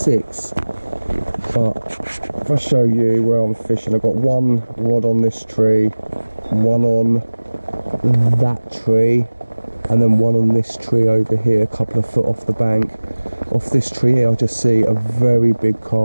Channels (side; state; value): both; inverted; correlation -1.00